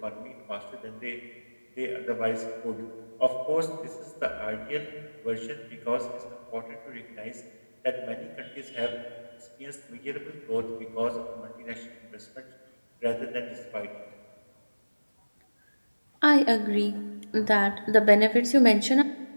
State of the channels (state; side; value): inverted; both; correlation -1.00